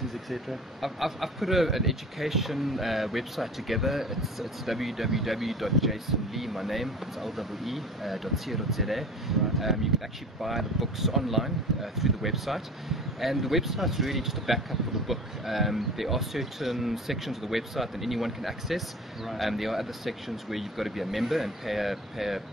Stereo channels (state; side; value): normal; both; correlation 0.39